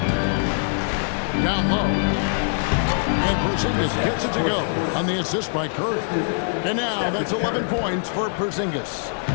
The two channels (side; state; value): right; silent; 63 dB below the other